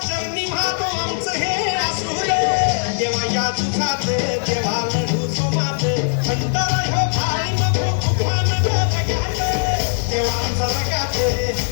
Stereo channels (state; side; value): silent; right; 66 dB below the other